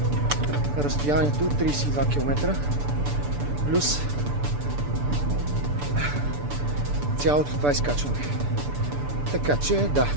разстоянието от 32 км плюс цялото това изкачване. Така че да,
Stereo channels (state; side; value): late; left; 6.9 ms